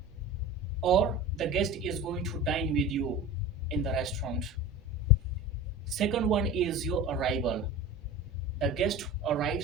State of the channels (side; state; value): right; noise; rumble, 26 dB below the sound